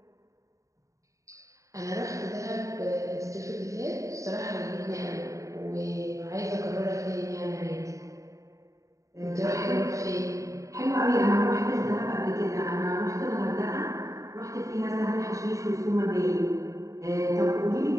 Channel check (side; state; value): left; late; 0.16 ms